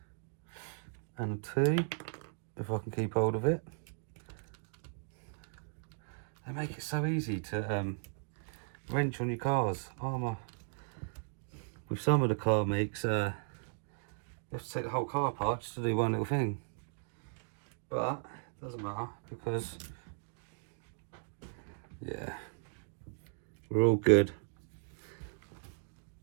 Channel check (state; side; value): silent; left; digital silence